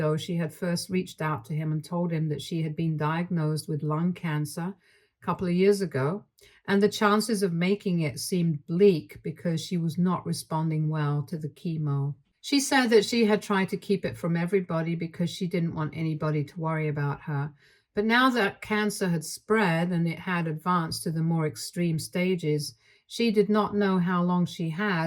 she had first reached out to him and told him that she had been diagnosed with lung cancer a couple of years ago, and the chances of making it seemed bleak because she was not responding well to the chemo. She said that she had tried to keep it from everybody because she didn't want anybody to worry about her. But now that cancer had spread and it had advanced to the more extreme stages, she did not know how long she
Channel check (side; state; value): both; identical; correlation 1.00